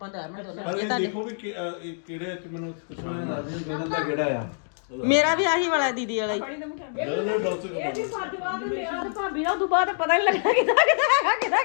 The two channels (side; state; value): right; silent; digital silence